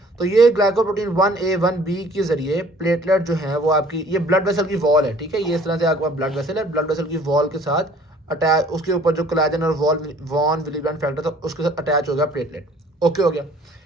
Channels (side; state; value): both; normal; correlation 0.54